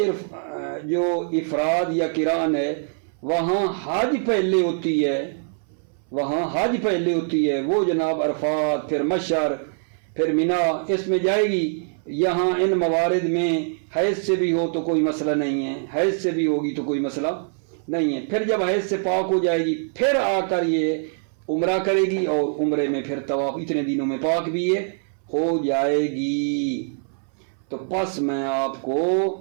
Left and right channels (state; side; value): silent; left; 59 dB below the other